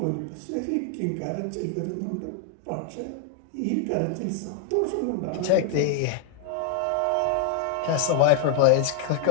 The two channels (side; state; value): both; different; correlation 0.00